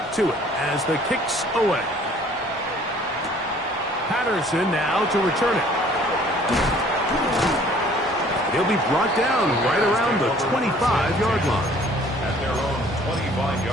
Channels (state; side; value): normal; both; correlation 0.55